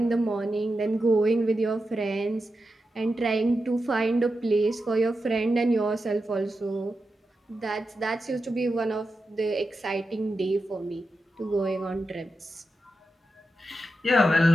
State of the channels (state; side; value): normal; both; correlation 0.89